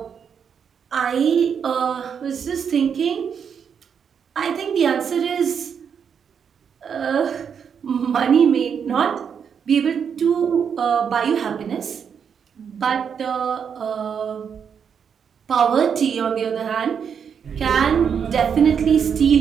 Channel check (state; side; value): quieter; left; 7.2 dB